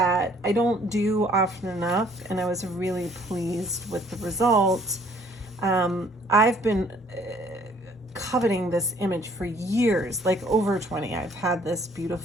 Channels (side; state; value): both; normal; correlation 0.60